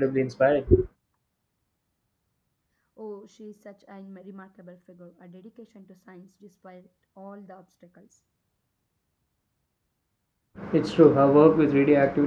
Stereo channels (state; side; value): identical; both; correlation 1.00